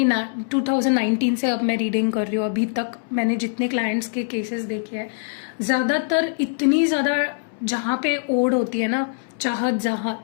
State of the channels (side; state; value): right; silent; 64 dB below the other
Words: से अब मैं रीडिंग कर रही हूँ, अभी तक मैंने जितने क्लाइंट्स के केसेस देखे हैं, ज़्यादातर इतनी ज़्यादा जहाँ पे ओढ़ होती है ना,